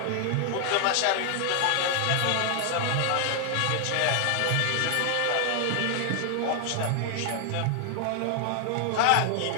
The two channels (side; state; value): both; different; correlation 0.00